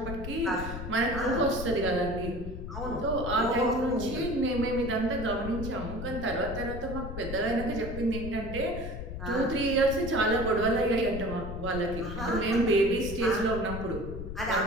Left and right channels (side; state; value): left; noise; rumble, 7 dB below the sound